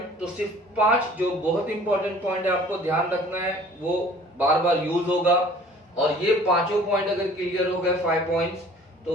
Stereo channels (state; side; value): normal; both; correlation 0.50